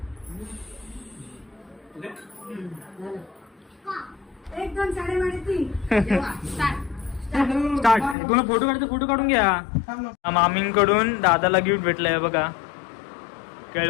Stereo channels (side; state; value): right; drops out; at 8.2 s